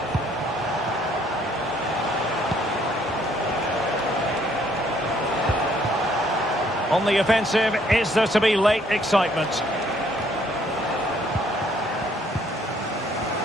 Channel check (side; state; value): both; normal; correlation 0.65